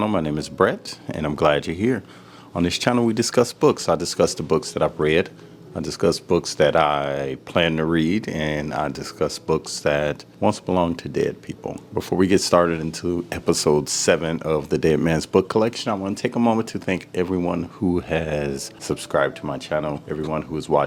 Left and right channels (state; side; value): identical; both; correlation 1.00